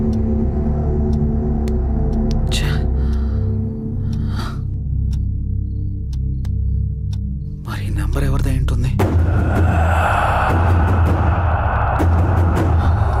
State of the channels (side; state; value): both; identical; correlation 1.00